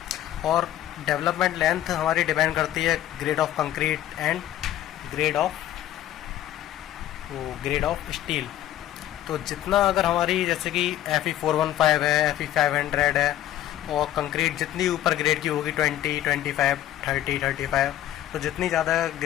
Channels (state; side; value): quieter; right; 12.7 dB